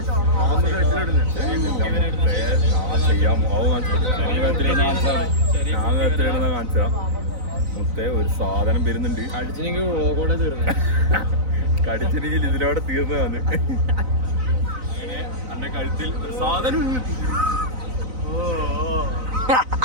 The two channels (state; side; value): late; left; 4.0 ms